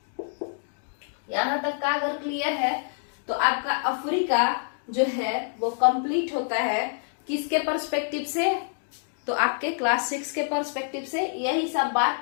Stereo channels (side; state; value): right; silent; 60 dB below the other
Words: यहां तक का अगर क्लियर है तो आपका अफ्रीका जो है वो कंप्लीट होता है किसके पर्सपेक्टिव से, तो आपके क्लास 6 के पर्सपेक्टिव से। यही सब